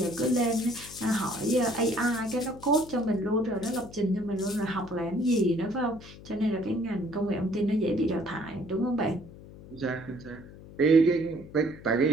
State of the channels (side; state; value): left; noise; hum, 17 dB below the sound